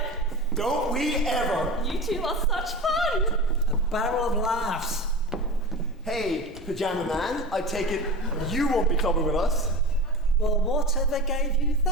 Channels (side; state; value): both; normal; correlation 0.29